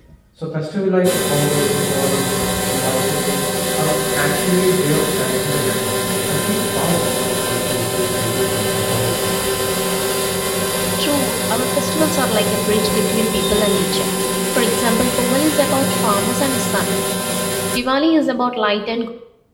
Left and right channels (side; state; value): both; identical; correlation 1.00